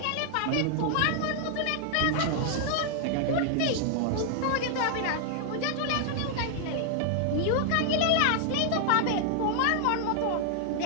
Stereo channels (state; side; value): different; both; correlation 0.00